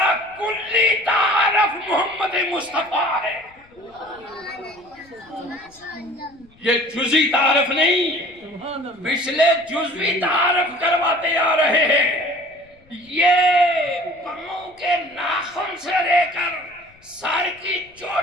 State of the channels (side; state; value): left; noise; rumble, 30 dB below the sound